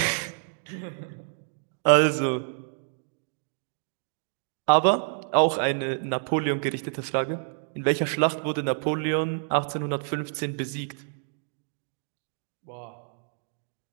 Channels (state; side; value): silent; left; digital silence